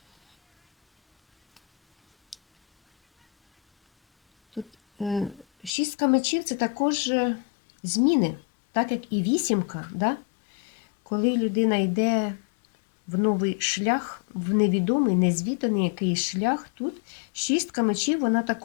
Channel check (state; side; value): drops out; right; at 5.7 s